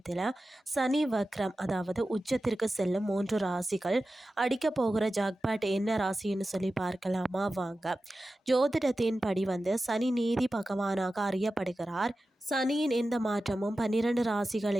சனி வக்ரம், அதாவது உச்சத்திற்கு செல்லும் 3 ராசிகள் அடிக்க போகிற ஜாக்பாட் என்ன ராசின்னு சொல்லி பார்க்கலாமா வாங்க. ஜோதிடத்தின் படி சனி நீதி பகவானாக அறியப்படுகிறார். சனியின் எந்த மாற்றமும் 12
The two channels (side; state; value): both; normal; correlation 0.94